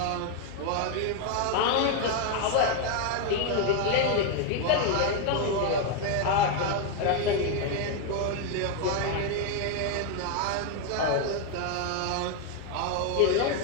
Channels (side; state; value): both; different; correlation 0.01